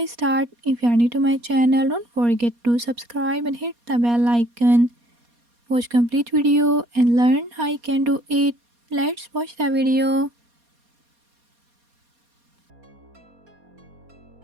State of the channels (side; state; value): left; late; 4.2 ms